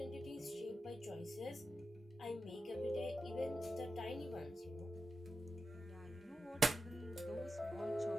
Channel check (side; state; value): both; normal; correlation 0.90